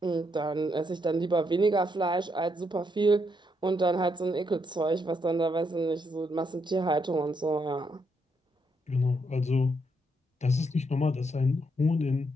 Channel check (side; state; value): both; normal; correlation 0.77